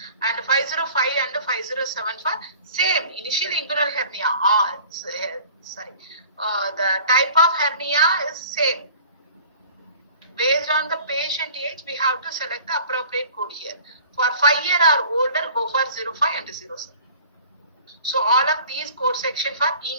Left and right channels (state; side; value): inverted; both; correlation -0.47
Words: And 505 and 507 for same initial inguinal hernia. The type of hernia is same. Based on the patient age, we have to select the appropriate code here. For 5 year or older, go for 05 and 07. So all of these code section for